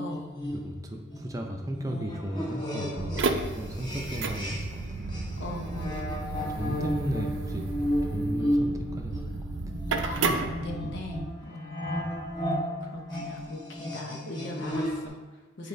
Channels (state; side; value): normal; both; correlation 0.65